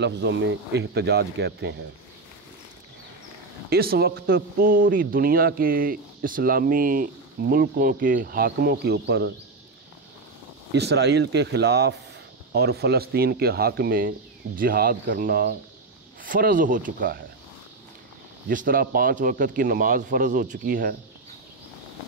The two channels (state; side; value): quieter; left; 3.5 dB